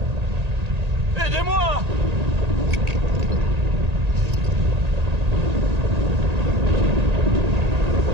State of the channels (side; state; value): left; late; 1.8 ms